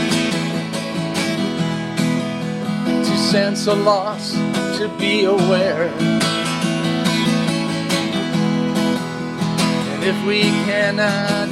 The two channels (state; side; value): identical; both; correlation 1.00